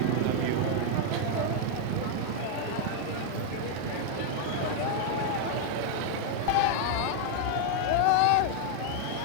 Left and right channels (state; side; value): different; both; correlation 0.00